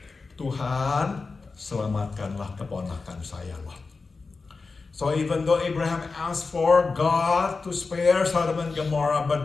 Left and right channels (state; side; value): quieter; right; 4.2 dB